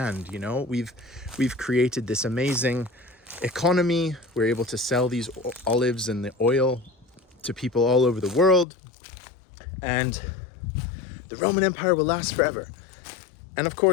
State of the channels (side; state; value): right; drops out; at 8.7 s